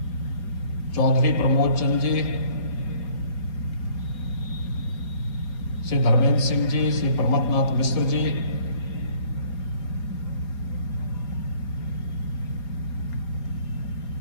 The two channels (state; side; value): late; right; 4.6 ms